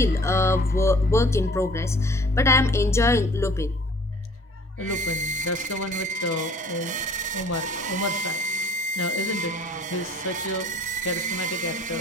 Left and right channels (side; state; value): both; normal; correlation 0.53